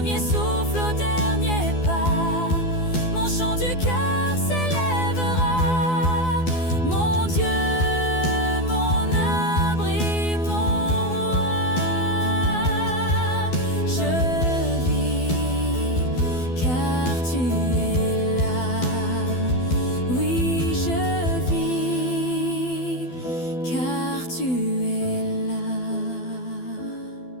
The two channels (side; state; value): right; late; 12 ms